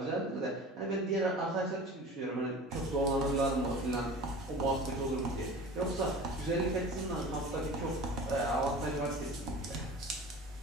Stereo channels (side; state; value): both; normal; correlation 0.38